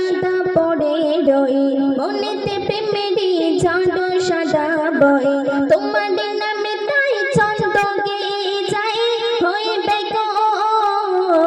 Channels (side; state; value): both; identical; correlation 1.00